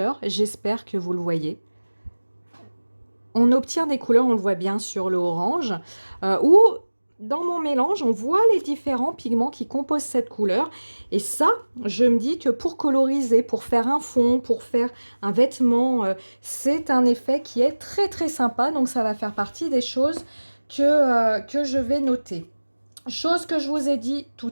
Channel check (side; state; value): both; inverted; correlation -1.00